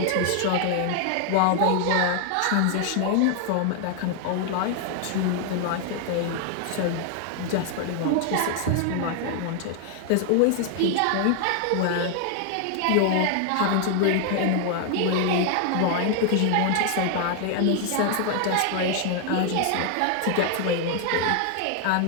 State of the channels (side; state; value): both; different; correlation 0.00